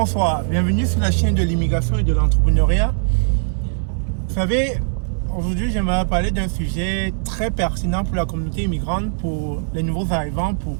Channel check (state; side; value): silent; left; digital silence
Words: Bienvenue sur la chaîne de l'immigration et de l'entrepreneuriat. Vous savez, aujourd'hui, j'aimerais parler d'un sujet très pertinent pour la communauté immigrante, pour les nouveaux arrivants, pour